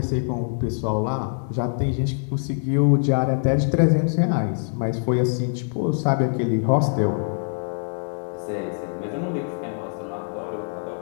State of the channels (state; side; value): silent; right; 62 dB below the other